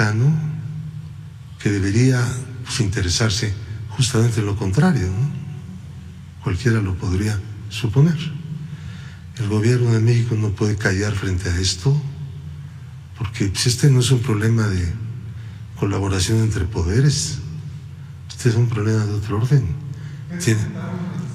que debería pues interesarse justamente en lo contrario, ¿no? Cualquiera lo podría suponer. El gobierno de México no puede callar frente a esto, porque pues, este no es un problema de colaboración entre poderes, este es un problema de otro orden.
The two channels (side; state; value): both; identical; correlation 1.00